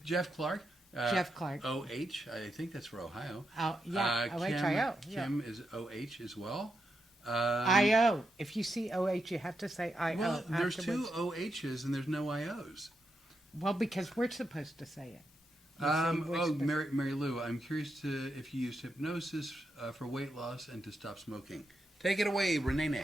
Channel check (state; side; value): normal; both; correlation 0.85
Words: Jeff Clark. Jeff Clark. OH, I think that's for Ohio. got? Oh, yeah, OHIO. Yeah. Kim is OH as well. IO. If you see OH, you have to say IO. Well, there's two afterwards. OHs and there's no IOs. Well, because we're supposed to say it. You see, we're supposed- Mary Lou, I'm curious to if you used hypnosis for weight loss and to stop smoking. Take it away, Rene.